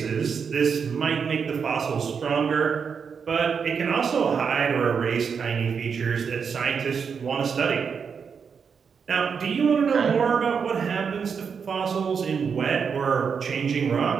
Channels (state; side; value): quieter; left; 6.3 dB